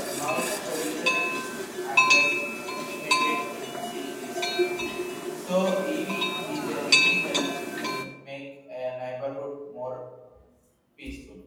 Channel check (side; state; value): both; identical; correlation 1.00